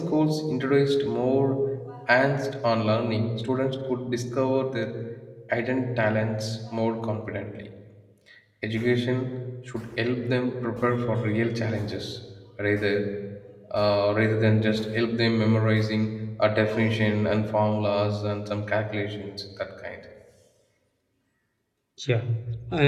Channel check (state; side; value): identical; both; correlation 1.00